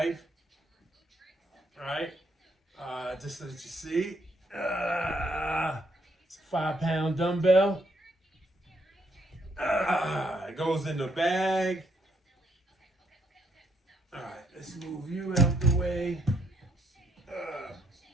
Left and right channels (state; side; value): normal; both; correlation 0.73